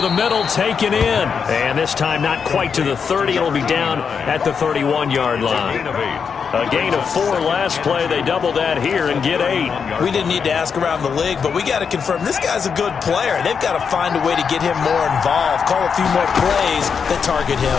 the middle, taken in. And this time not quite to the 30. It'll be down at the 31-yard line. A gain of 4 last play. They double that here and get 8. We didn't need to ask around the league, but we got to confirm this guy's a good player. They've got to find a way to get him more involved, call a few more plays that target him.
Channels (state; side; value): quieter; right; 6.3 dB